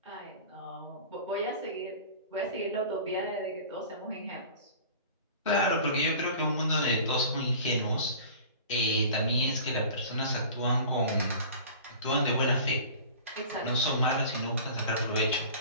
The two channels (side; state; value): both; inverted; correlation -0.41